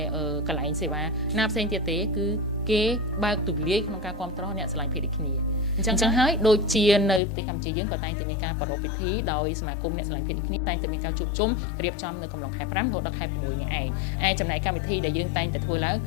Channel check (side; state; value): right; drops out; at 7.2 s